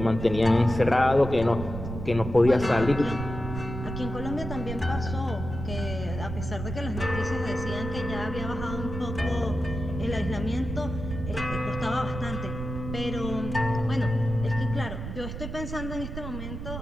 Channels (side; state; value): right; noise; rumble, 7 dB below the sound